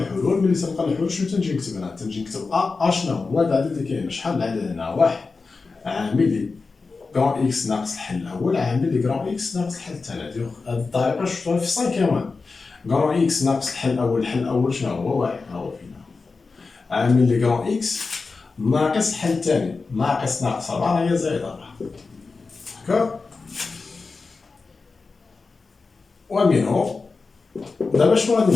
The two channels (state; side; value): quieter; right; 4.2 dB